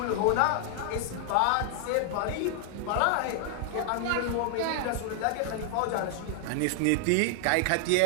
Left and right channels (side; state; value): both; different; correlation 0.00